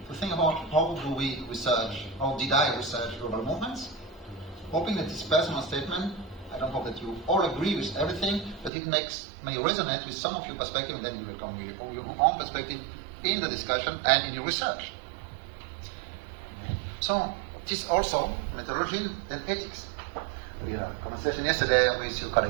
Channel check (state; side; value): drops out; left; at 8.7 s